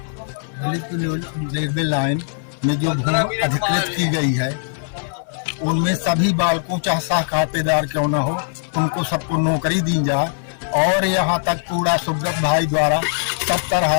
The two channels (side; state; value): right; silent; digital silence